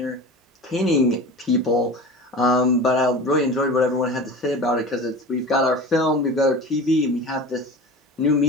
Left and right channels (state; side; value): normal; both; correlation 0.34